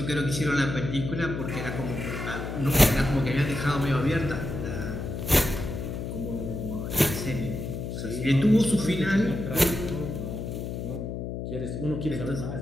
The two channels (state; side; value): noise; left; hum, 5 dB below the sound